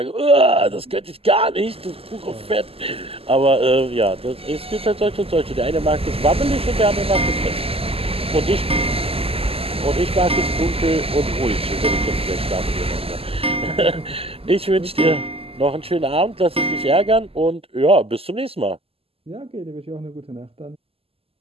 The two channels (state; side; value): late; left; 0.28 ms